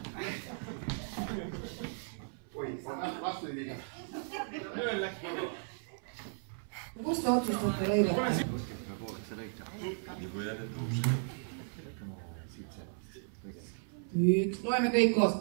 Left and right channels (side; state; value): left; silent; 54 dB below the other